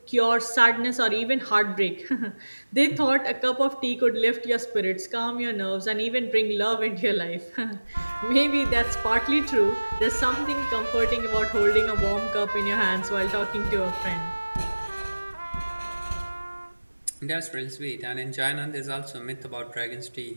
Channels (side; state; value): both; inverted; correlation -1.00